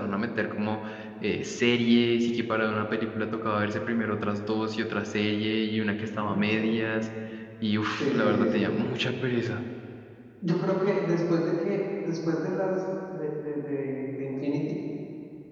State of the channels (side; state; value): both; identical; correlation 1.00